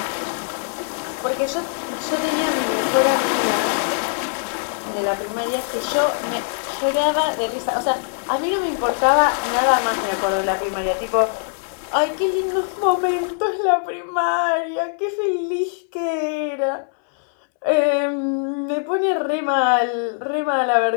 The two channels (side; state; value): right; silent; 64 dB below the other